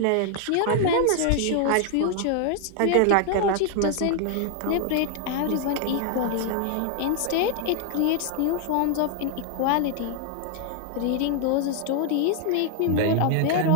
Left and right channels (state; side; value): different; both; correlation 0.00